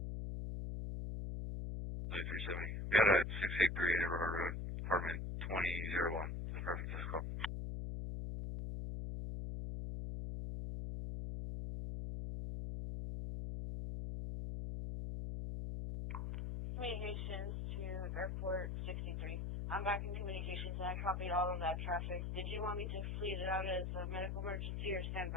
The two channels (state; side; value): noise; left; hum, 3 dB below the sound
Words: Lady 370. Be out at 683 River Road, apartment 2001. Perfect, let's go. Communications to Airport 63. I'm back in communications and I copied all of that traffic. Did you want me to fleet it out as a medical emergency or